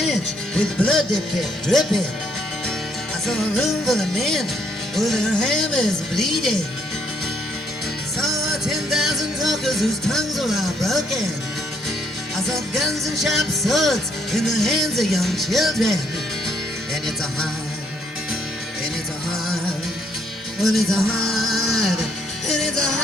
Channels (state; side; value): normal; both; correlation 0.70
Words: with blood that kept dripping. I saw a room full of men with their hammers bleeding. I saw 10,000 talkers whose tongues were all broken. I saw guns and sharp swords in the hands of young children. And it's a hard, and it's a hard, well it's a hard, and it's a